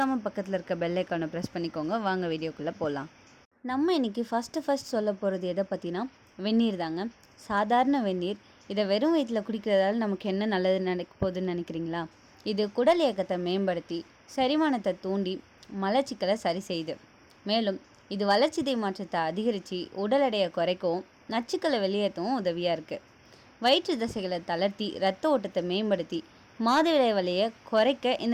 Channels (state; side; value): identical; both; correlation 1.00